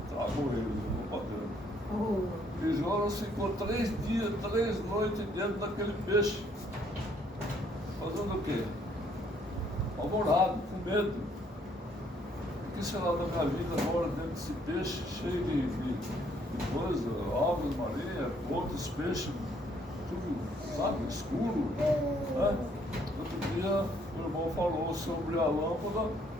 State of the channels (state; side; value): normal; both; correlation 0.66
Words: tragou ele no padrão. E Jonas ficou 3 dias, 3 noites dentro daquele peixe. Fazendo o quê? Apavorado, com medo. O que será da minha vida agora dentro desse peixe cheio de coisa, aves marinhas, outros peixes, tudo, sabe, escuro, né? Outro dia o irmão falou sobre a lâmpada